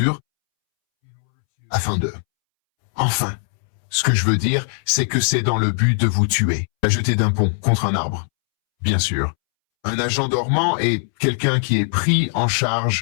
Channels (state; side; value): silent; right; 66 dB below the other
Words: afin de... Enfin, ce que je veux dire, c'est que c'est dans le but de vous tuer. La jeter d'un pont contre un arbre. Bien sûr. Un agent dormant est quelqu'un qui est pris en